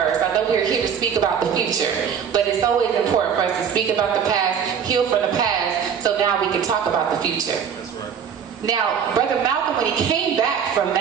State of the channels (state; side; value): quieter; left; 7.5 dB